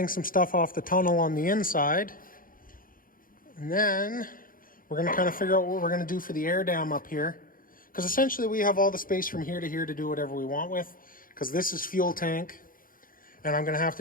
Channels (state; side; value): late; right; 0.41 ms